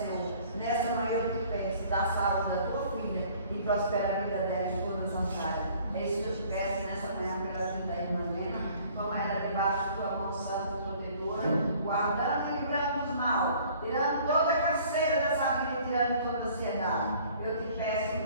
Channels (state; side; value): inverted; both; correlation -0.54